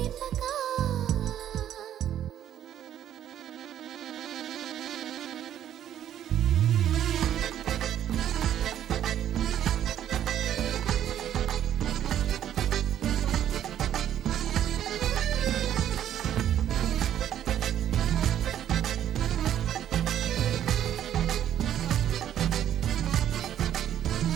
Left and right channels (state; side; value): quieter; left; 10.8 dB